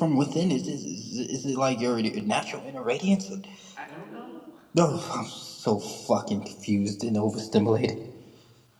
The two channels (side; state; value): both; identical; correlation 1.00